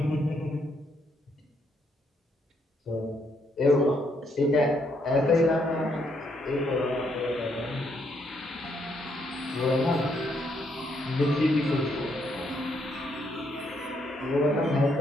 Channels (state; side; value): normal; both; correlation 0.74